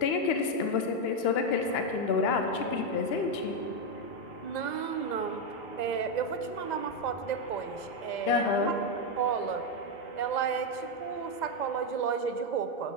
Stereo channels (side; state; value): right; late; 2.9 ms